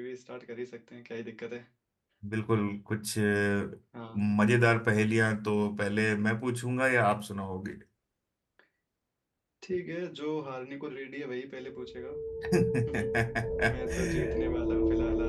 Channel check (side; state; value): both; identical; correlation 1.00